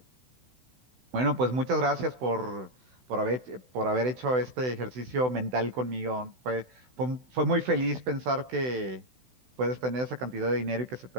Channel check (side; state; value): left; late; 16 ms